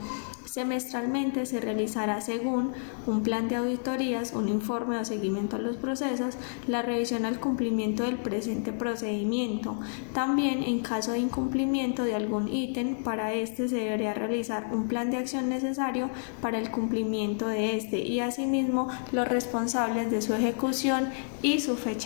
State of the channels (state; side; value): silent; right; digital silence